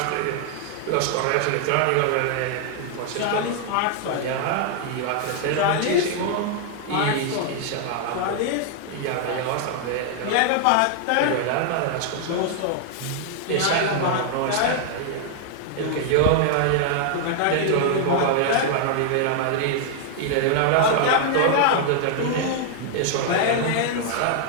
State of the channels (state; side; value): different; both; correlation 0.00